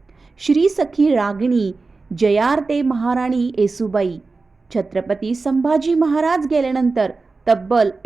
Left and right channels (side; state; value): left; quieter; 3.9 dB